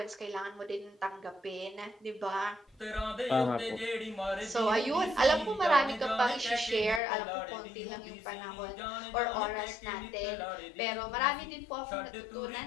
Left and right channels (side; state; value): right; drops out; at 7.0 s